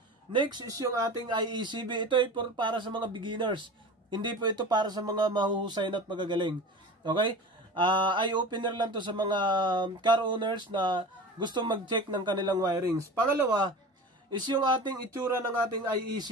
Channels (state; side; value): normal; both; correlation 0.34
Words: Next is yung ating IECB. Ito ay para sa mga beginners. Hindi po ito para sa mga mahuhusay at magagaling. Okay? Eye-opener lang to sa mga car owners na gusto mag-check ng kanilang wirings. Pangalawa is yung ating itsura ng ating